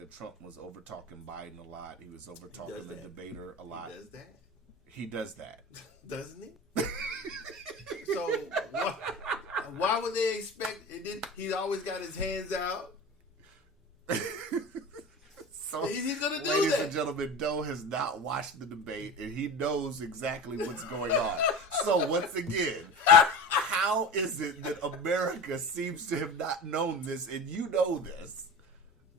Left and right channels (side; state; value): both; normal; correlation 0.31